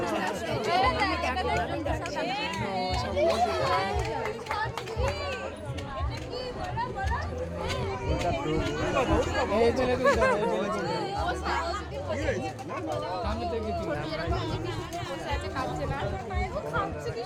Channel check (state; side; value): identical; both; correlation 1.00